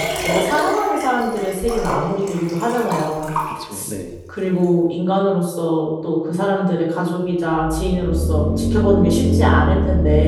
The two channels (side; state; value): both; identical; correlation 1.00